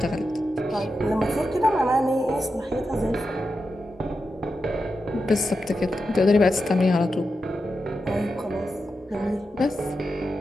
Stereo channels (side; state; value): both; normal; correlation 0.89